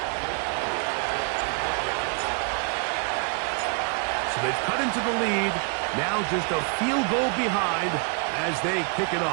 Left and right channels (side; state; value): left; quieter; 38.8 dB